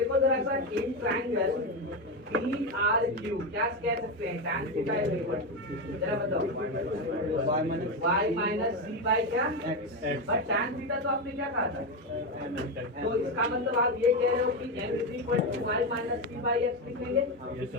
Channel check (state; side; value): normal; both; correlation 0.12